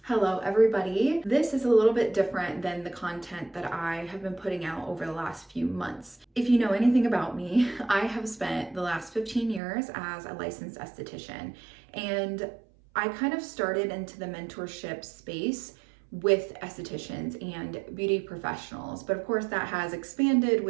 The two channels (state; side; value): drops out; left; at 9.6 s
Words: Hello everybody. This is a little bit different than the content that I have been putting out over the last few months. If you know anything about me, I have spent the last 15 years as a licensed esthetician, and I kind of started into the mentorship space with estheticians and beauty professionals, but of course that has expanded